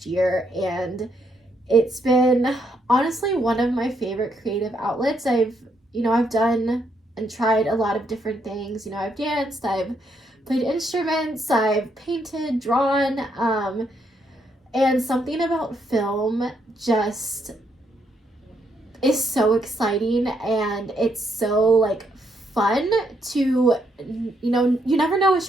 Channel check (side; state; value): both; normal; correlation 0.75